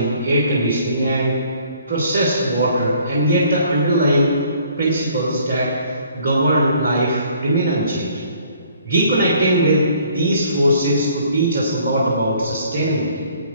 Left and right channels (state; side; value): inverted; both; correlation -0.59